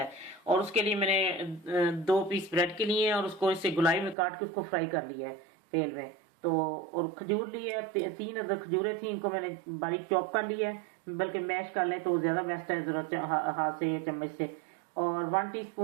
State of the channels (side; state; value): left; drops out; at 4.2 s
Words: और उसके लिए मैंने 2 पीस ब्रेड के लिए और उसको इससे गुलाई में काट के उसको फ्राई कर लिया है तेल में। तो और खजूर ली है, 3 अदर खजूरें थी, इनको मैंने बारीक चॉप कर लिया है, बल्कि मैश कर लें तो ज़्यादा बेस्ट है, ज़रा हाथ से या चम्मच से। और 1